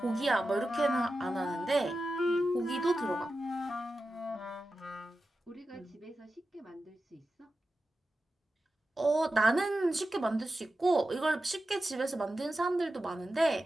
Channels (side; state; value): both; normal; correlation 0.92